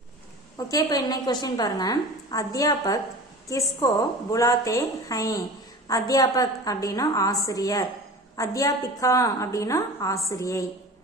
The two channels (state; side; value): normal; both; correlation 0.37